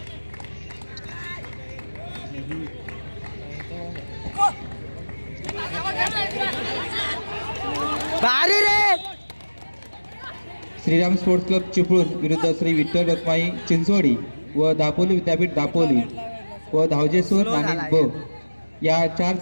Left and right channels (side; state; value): both; inverted; correlation -1.00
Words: श्रीराम स्पोर्ट्स क्लब चिपळूण विरुद्ध श्री विठ्ठल रखुमाई चिंचवडी व दापोली विद्यापीठ दापोली व धावजेश्वर नाणीज ब या 4